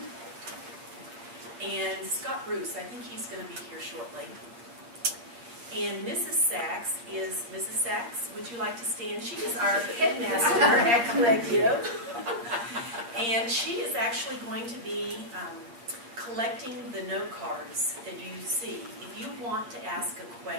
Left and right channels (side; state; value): left; late; 8.5 ms